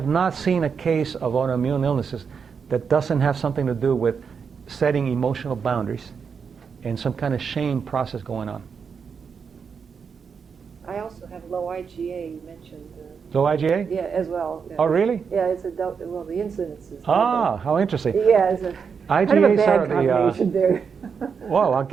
not seen a case of autoimmune illnesses that doesn't have something to do with setting emotional boundaries and some kind of shame process going on. I also have low IgA, you mentioned. Low IgA? Yeah, as well. Yeah. Oh, really? Yeah, it's well, the incidence is. How interesting. Yeah, it's a IgAs are the. combination there. Whoa, I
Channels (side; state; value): left; quieter; 6.2 dB